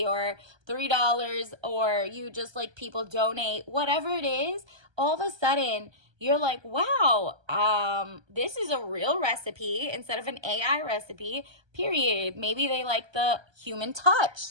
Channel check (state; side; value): late; left; 1.3 ms